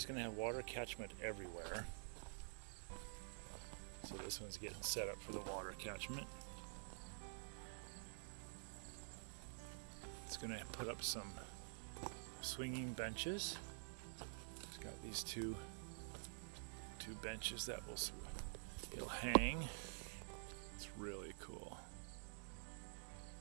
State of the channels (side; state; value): left; silent; digital silence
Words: going to have water catchment everywhere. So this one's getting set up for the water catchment. It's going to put up some swinging benches. It's got these two benches that it'll hang. It's really cool.